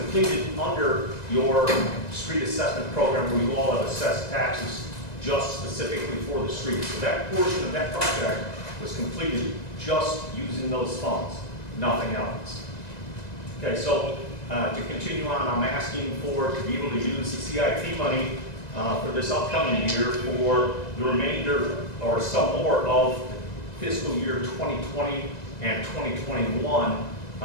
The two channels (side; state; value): right; late; 1.9 ms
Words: under your street assessment program where you all have assessed taxes just specifically for the streets. So that portion of that project was completed just using those funds, nothing else. Okay, so to continue on, I'm asking to be able to use the CIP money for this upcoming year for the remainder or some more of fiscal year 2020 and 2021